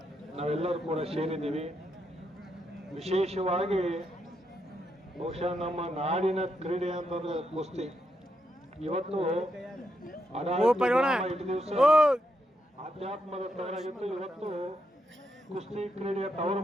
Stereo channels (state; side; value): normal; both; correlation 0.81